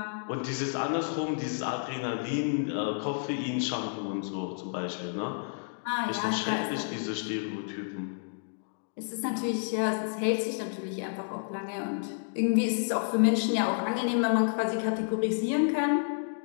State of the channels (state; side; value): silent; right; digital silence